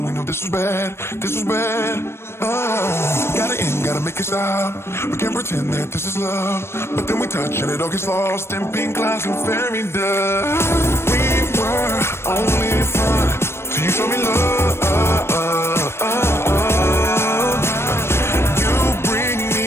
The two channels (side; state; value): right; late; 0.12 ms